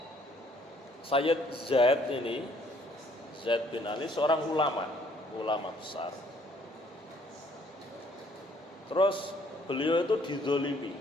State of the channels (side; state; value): both; normal; correlation 0.63